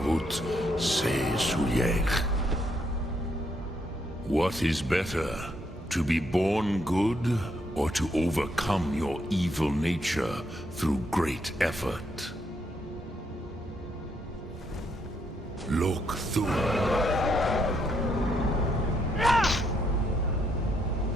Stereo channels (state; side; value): normal; both; correlation 0.75